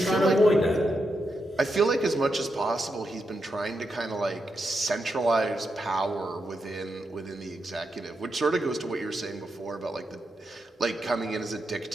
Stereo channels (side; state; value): both; normal; correlation 0.85